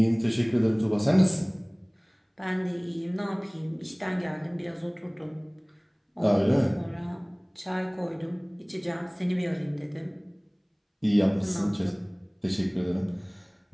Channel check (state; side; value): identical; both; correlation 1.00